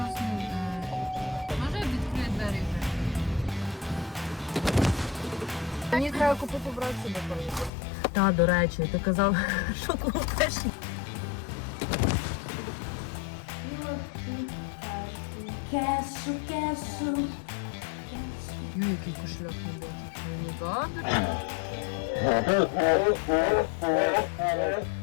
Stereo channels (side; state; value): right; drops out; at 7.7 s